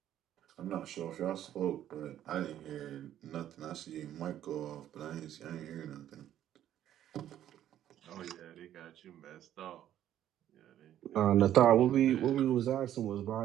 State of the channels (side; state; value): left; quieter; 11.5 dB